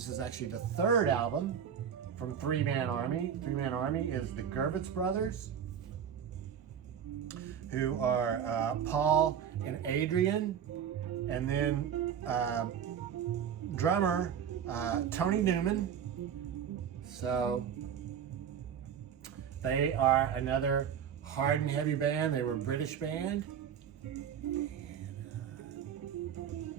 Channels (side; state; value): left; quieter; 8.3 dB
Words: is actually the third album from Three Man Army. Three Man Army is the Gervitz brothers, who are Paul and Adrian, and then drummer Tony Newman. So they are another hard and heavy band. They were a British band. And